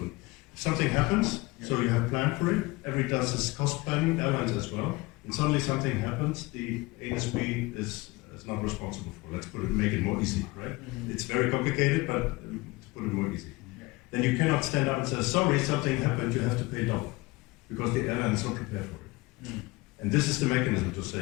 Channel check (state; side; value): quieter; right; 22.6 dB